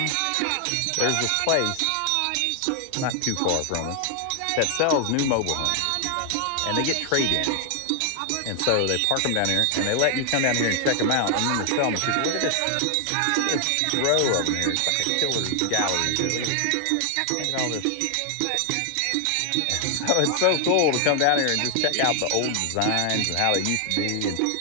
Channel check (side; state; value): both; different; correlation 0.00